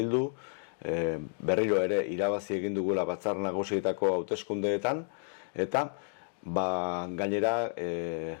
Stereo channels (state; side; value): silent; right; 57 dB below the other